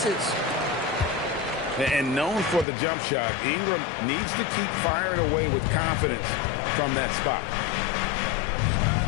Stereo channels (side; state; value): right; drops out; at 2.7 s